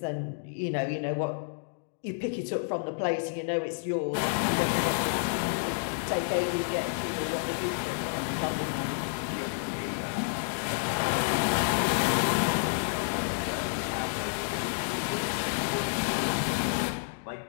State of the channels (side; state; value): right; silent; digital silence